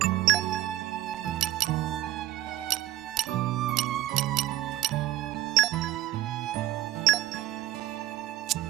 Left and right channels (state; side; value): quieter; left; 14.3 dB